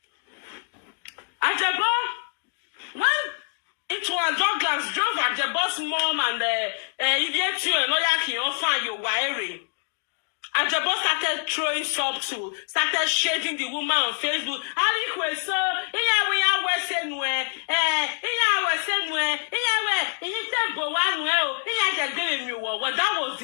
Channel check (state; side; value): silent; right; digital silence